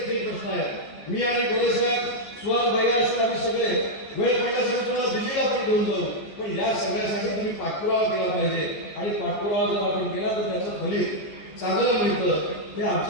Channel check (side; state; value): right; late; 14 ms